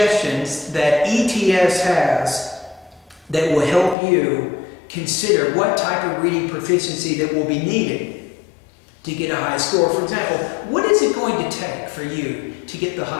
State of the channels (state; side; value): drops out; right; at 4.0 s